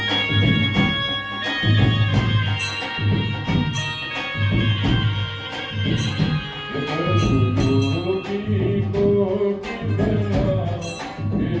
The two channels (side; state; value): both; identical; correlation 1.00